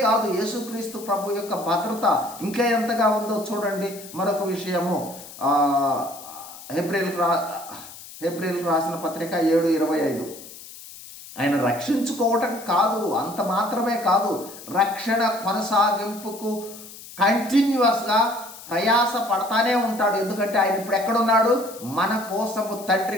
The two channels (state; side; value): noise; left; hiss, 16 dB below the sound